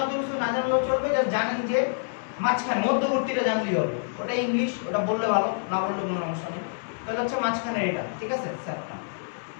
অত কিছু না জানলেও চলবে, যা জানেন যে মাঝখানে, মধ্যবর্তীটা জানলেই হবে। ওটা ইংলিশ, ওটা বললে ভালো, না বললে কোনো সমস্যা নেই। তাহলে হচ্ছে মাঝখানে এটা, ঠিক আছে? সেপ্টাম।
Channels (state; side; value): silent; right; digital silence